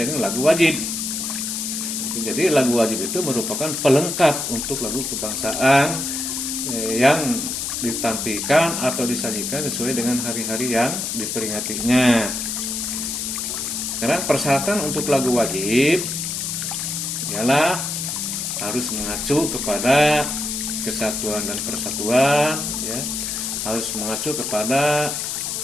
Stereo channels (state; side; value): noise; left; hiss, 3 dB below the sound